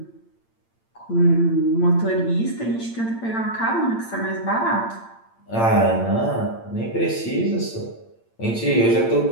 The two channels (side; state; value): right; late; 8.8 ms